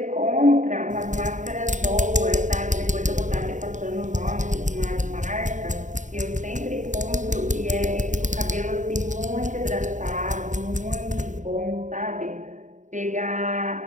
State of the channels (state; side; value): late; left; 0.36 ms